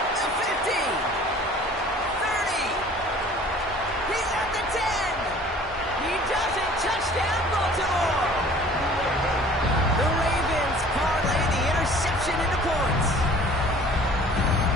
The 50. 30. He's at the 10. He does it. Touchdown, Baltimore. The Ravens parlay the interception into points.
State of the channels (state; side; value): normal; both; correlation 0.49